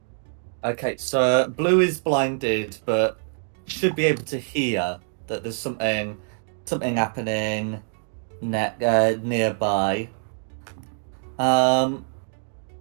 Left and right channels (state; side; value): silent; left; digital silence